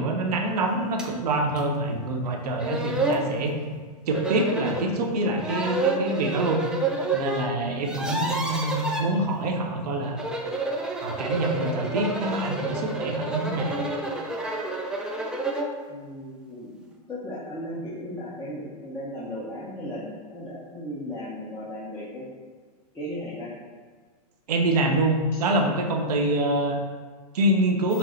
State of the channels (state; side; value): normal; both; correlation -0.02